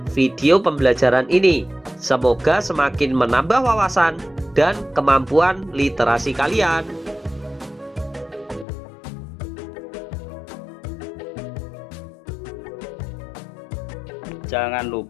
video pembelajaran ini. Semoga semakin menambah wawasan dan kemampuan literasi kalian. Jangan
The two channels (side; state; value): right; drops out; at 8.7 s